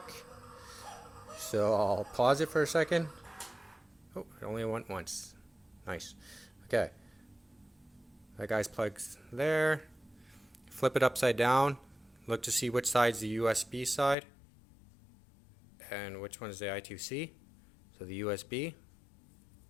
So I'll pause it for a second. Oh, it only went once. Nice. Okay. That guy's plugged there. Flip it upside down. Look to see which side's the USB side and which one is the I2C. So the USB.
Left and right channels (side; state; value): right; drops out; at 14.2 s